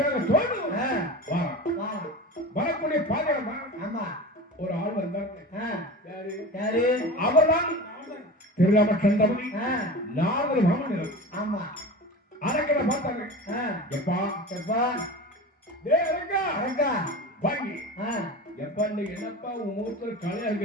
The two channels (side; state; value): both; normal; correlation 0.31